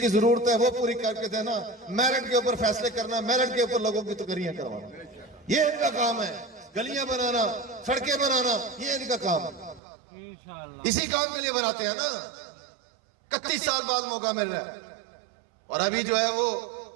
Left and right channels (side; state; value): left; drops out; at 9.8 s